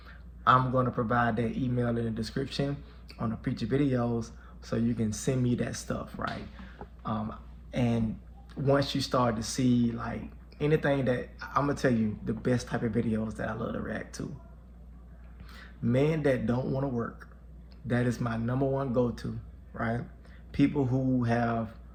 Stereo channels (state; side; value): identical; both; correlation 1.00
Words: I'm going to provide that email in the description on the future videos, so you can send me that stuff, right? And once you start to see like anything that, I'm gonna tell you the best type of videos that I love to react to. Men that don't want to work, that is my number one go-to, right? People who have